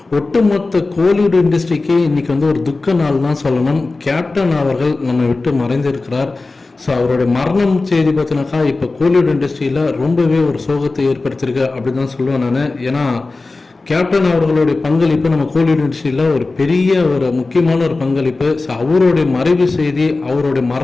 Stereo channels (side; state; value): right; quieter; 3.5 dB